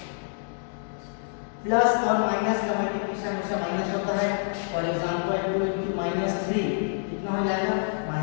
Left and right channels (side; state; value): right; silent; digital silence